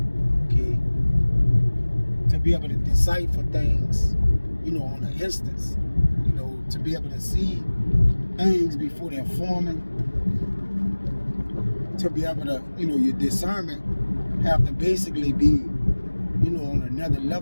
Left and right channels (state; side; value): inverted; both; correlation -1.00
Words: okay? To be able to decipher things, you know, on an instance. You know, to be able to see things before they're forming. To be able to, you know, your discernment have to basically be, you know, on another